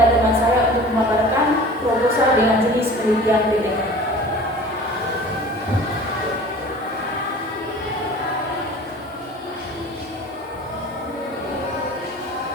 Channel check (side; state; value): both; normal; correlation 0.42